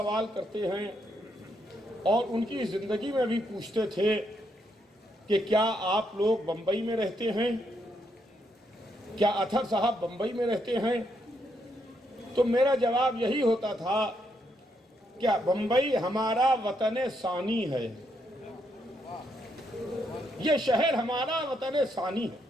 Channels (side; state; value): both; normal; correlation 0.77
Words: کرتے ہیں اور ان کی زندگی میں بھی پوچھتے تھے کہ کیا آپ لوگ بمبئی میں رہتے ہیں، کیا اطہر صاحب بمبئی میں رہتے ہیں؟ تو میرا جواب یہی ہوتا تھا کہ بمبئی ہمارا وطن ثانی ہے، یہ شہر ہمارا وطن ثانی